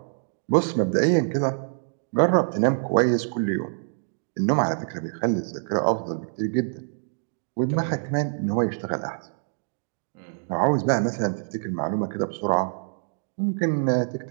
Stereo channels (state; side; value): silent; left; digital silence